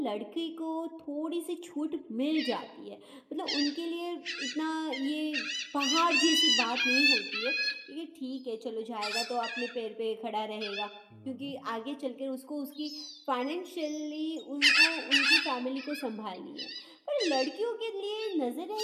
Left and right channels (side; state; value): both; identical; correlation 1.00